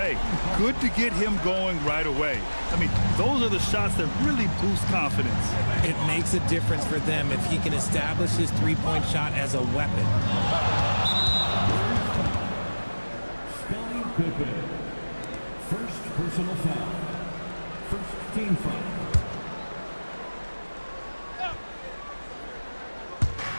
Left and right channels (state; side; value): inverted; both; correlation -1.00